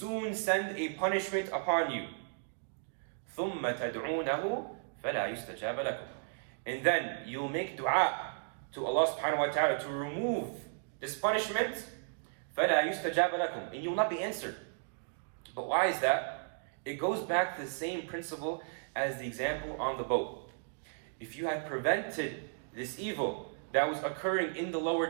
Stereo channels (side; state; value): left; silent; digital silence